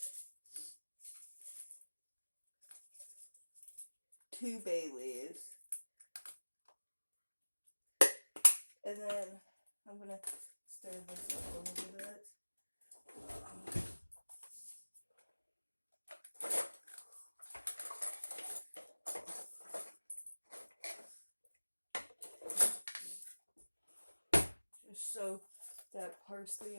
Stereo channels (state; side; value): inverted; both; correlation -1.00